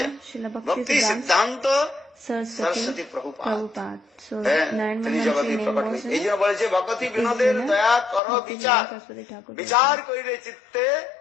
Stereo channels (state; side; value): drops out; right; at 8.2 s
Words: Srila ভক্তি Bhaktisiddhanta সিদ্ধান্ত Saraswati সরস্বতী প্রভুপাদ। Prabhupada. So তিনি 911 জগতে name প্রকট was হয়েছে। এই জন্য বলেছে ভগতি is বিনোদের in a দয়া কর বিচার, Bhaktisiddhanta Saraswati Thakur. বিচার করিলে চিত্তে